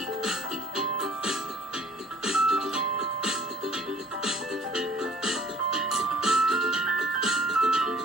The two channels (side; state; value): both; normal; correlation 0.53